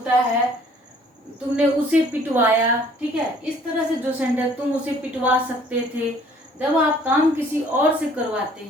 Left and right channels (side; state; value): both; normal; correlation 0.57